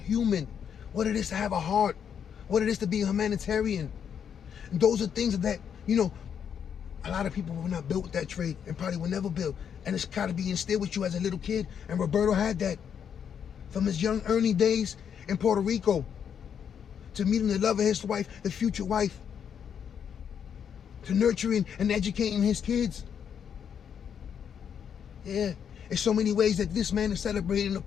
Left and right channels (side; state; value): right; quieter; 7.9 dB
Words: what it is to have a heart, what it is to be a humanitarian. And those are things that, a lot of people were not built with that trait and probably will never build. And it's got to be instilled with you as a little kid. And Roberto had that from his young early days in Puerto Rico to meeting the love of his wife, the future wife, to nurturing and educating his kids. Yeah, there's so many ways that this man is celebrated and